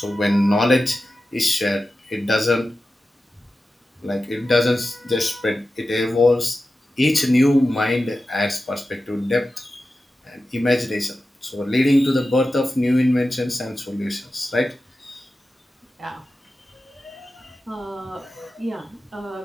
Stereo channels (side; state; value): both; normal; correlation 0.93